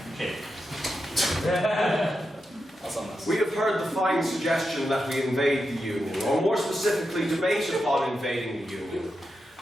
We have heard the fine suggestion that we invade the union, or more specifically, debate upon invading the union.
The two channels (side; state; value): both; normal; correlation 0.88